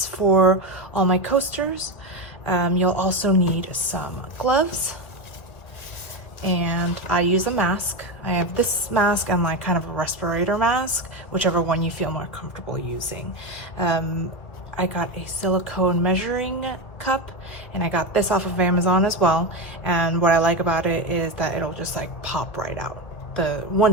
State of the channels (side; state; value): right; late; 1.9 ms